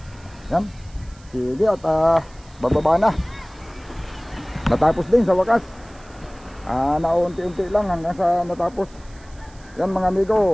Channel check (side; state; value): right; noise; hiss, 27 dB below the sound